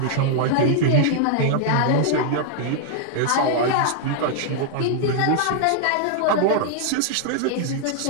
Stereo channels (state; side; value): different; both; correlation -0.01